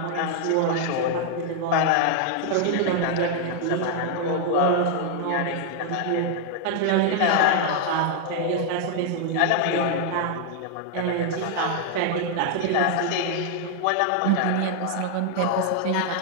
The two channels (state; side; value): different; both; correlation 0.00